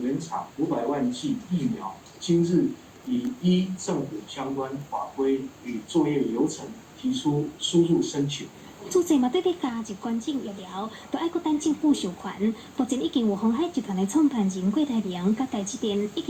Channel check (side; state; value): both; identical; correlation 1.00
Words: 原厂500万剂疫苗，今日已依政府相关法规与作业流程提出输入申请。主治嘛对要加入捐赠疫苗，就爱搁等政府授权。目前已经有鸿海集团的创办人郭台铭甲台积电已